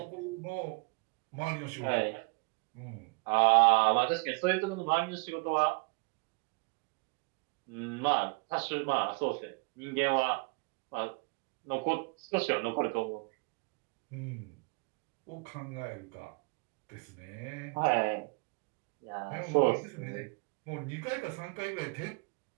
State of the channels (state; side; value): quieter; left; 31.3 dB